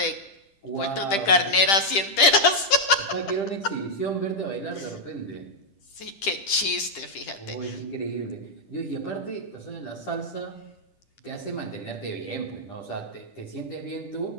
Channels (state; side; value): late; right; 10 ms